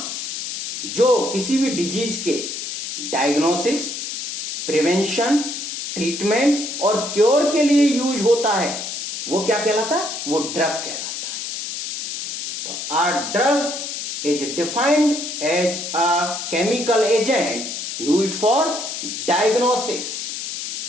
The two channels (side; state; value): left; noise; hiss, 6 dB below the sound